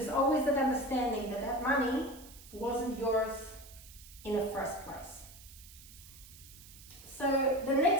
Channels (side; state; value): right; noise; hiss, 19 dB below the sound